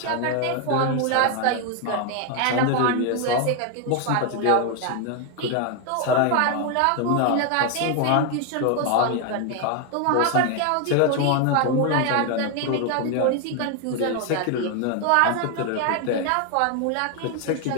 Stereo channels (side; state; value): both; different; correlation 0.01